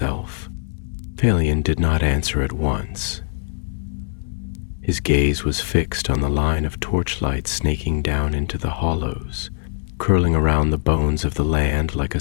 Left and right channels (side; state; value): right; silent; 64 dB below the other